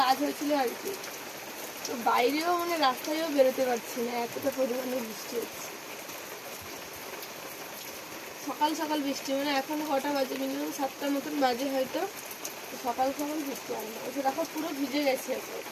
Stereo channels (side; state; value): both; identical; correlation 1.00